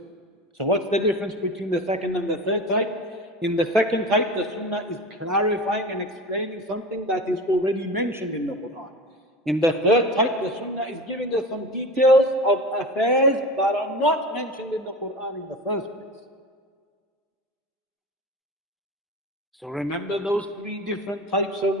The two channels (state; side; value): normal; both; correlation 0.31